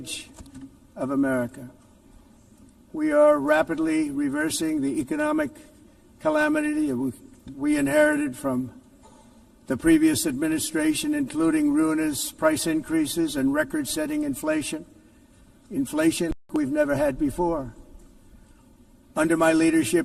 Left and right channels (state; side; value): identical; both; correlation 1.00